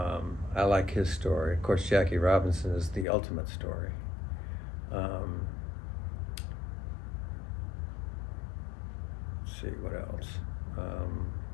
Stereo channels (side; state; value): right; drops out; at 3.1 s